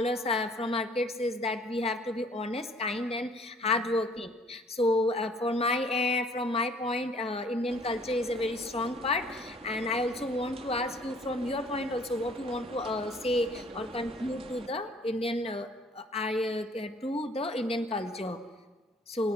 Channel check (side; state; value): both; normal; correlation 0.56